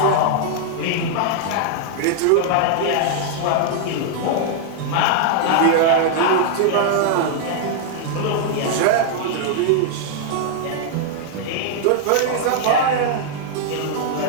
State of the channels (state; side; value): different; both; correlation -0.01